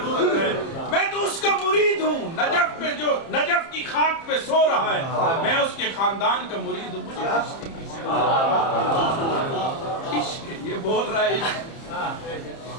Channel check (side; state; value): right; late; 30 ms